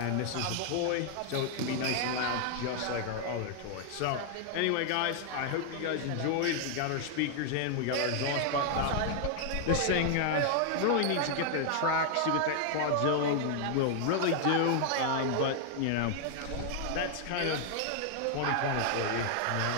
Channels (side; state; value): both; different; correlation 0.00